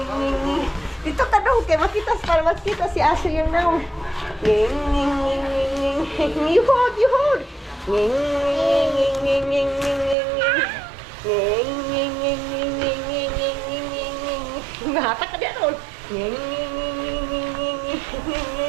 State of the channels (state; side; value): drops out; left; at 10.2 s